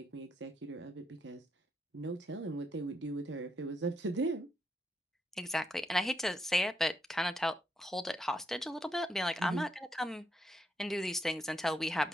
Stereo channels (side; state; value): both; normal; correlation 0.79